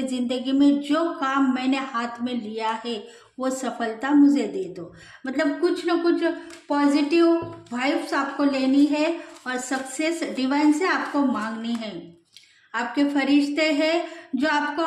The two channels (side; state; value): both; identical; correlation 1.00